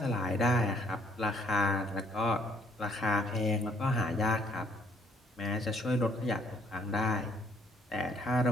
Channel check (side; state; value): both; normal; correlation 0.63